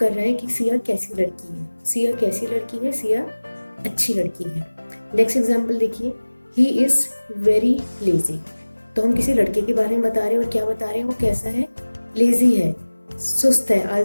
रहा है कि सिया कैसी लड़की है। सिया कैसी लड़की है, सिया अच्छी लड़की है। नेक्स्ट एग्जाम्पल देखिए, ही इज़ वेरी लेजी। तो हम किसी लड़के के बारे में बता रहे हैं और क्या बता रहे हैं, वो कैसा है, लेजी है, सुस्त है,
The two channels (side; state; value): both; inverted; correlation -1.00